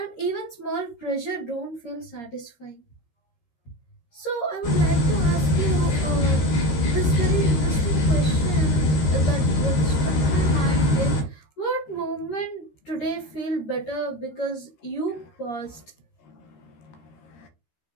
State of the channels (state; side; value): late; right; 13 ms